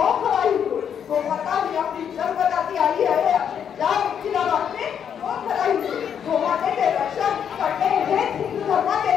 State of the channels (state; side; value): quieter; right; 8.2 dB